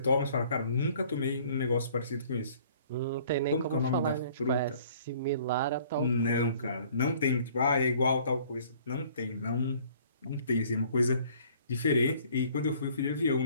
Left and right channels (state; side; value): inverted; both; correlation -0.56